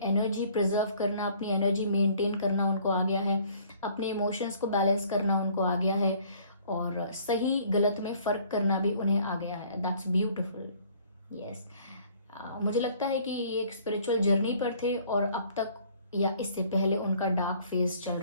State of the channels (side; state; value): both; inverted; correlation -0.57